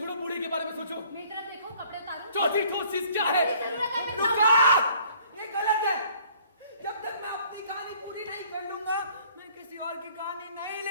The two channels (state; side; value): inverted; both; correlation -0.57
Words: बूढ़े के बारे में सोचो। मेरी तरफ देखो, कपड़े उतारो। चौथी ठोस चीज क्या है? मेरी जरूरत है, बचाओ। रुका! ये गलत है। जब तक मैं अपनी कहानी पूरी नहीं कर लूंगा, मैं किसी और की कहानी नहीं